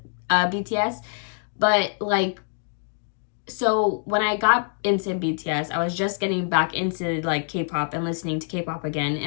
BTS, but, like, so when I got into BTS, I was just getting back into like K-pop and listening to K-pop again,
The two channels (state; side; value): silent; right; digital silence